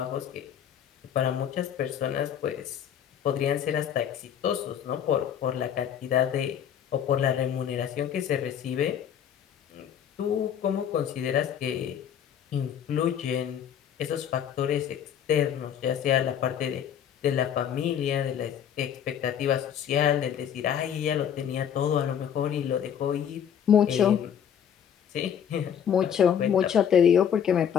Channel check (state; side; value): quieter; right; 8.8 dB